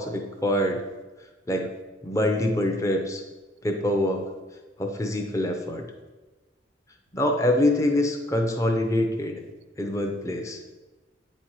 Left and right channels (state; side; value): normal; both; correlation 0.63